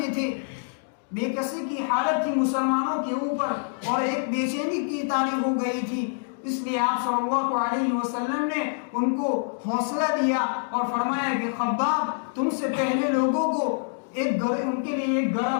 تھے، بے کسی کی حالت تھی مسلمانوں کے اوپر اور ایک بے چینی کی طاری ہو گئی تھی، اس لیے آپ صلی اللہ علیہ وسلم نے ان کو حوصلہ دیا اور فرمایا کہ خباب تم سے پہلے لوگوں کو ان کے لیے ایک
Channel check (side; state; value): right; silent; digital silence